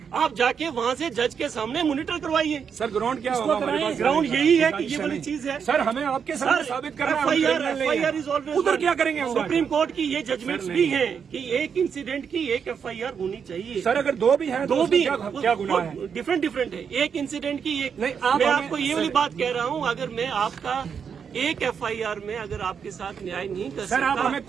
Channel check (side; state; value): left; quieter; 6.9 dB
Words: आप जाके वहाँ से जज के सामने मॉनिटर करवाइए। सर ग्राउंड क्या होगा हमारे पास? ग्राउंड यही है कि ये वाली चीज है। सर हमें आपके सामने साबित करना है। FIR इज ऑलवेज, उधर क्या करेंगे हम? सुप्रीम कोर्ट की ये जजमेंट्स भी हैं कि एक इंसिडेंट की एक FIR होनी चाहिए। सर अगर दो भी हैं तो दो भी क्या गुनाह है? डिफरेंट है। एक इंसिडेंट की एक नहीं, मैं आपको ये वाली बात कह रहा हूँ, अगर मैं आपका एक FIR में अगर आपके साथ न्याय नहीं कर सकता, आप हमें